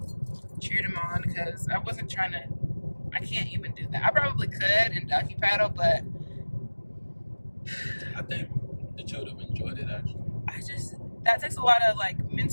cheered him on because I wasn't trying to. I can't even do that. I probably could and ducky paddle, but I think that you would have enjoyed it actually. That takes a lot of like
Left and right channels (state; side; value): inverted; both; correlation -1.00